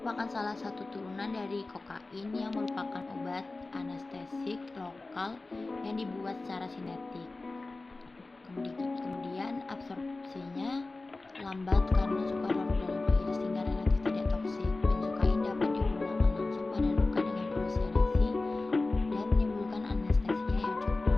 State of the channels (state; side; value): quieter; right; 3.3 dB